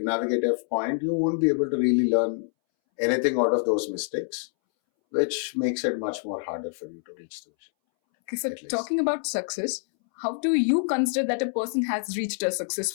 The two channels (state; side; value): silent; right; 61 dB below the other